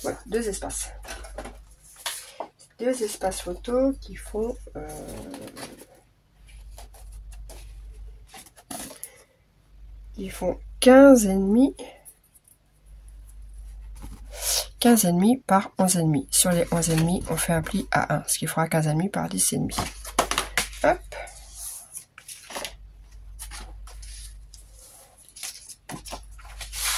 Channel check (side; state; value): both; identical; correlation 1.00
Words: voilà, deux espaces. Deux espaces photo qui font 15,5 par 11,5. Sur les 11,5, on fait un pli à 1, ce qui fera 15,5 par 10,5. Hop.